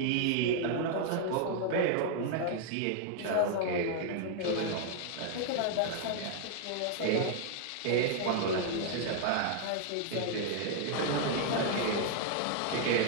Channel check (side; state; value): both; different; correlation 0.00